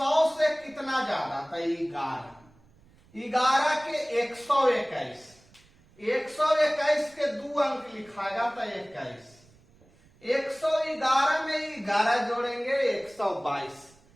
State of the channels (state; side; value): noise; right; rumble, 29 dB below the sound